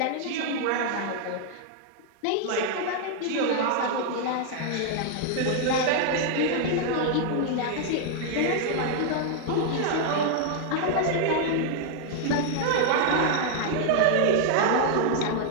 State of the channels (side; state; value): both; different; correlation 0.00